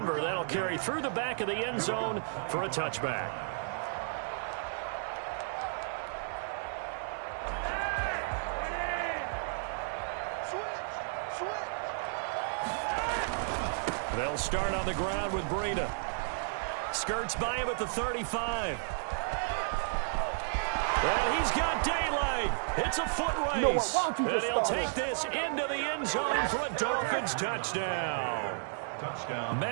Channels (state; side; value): silent; left; digital silence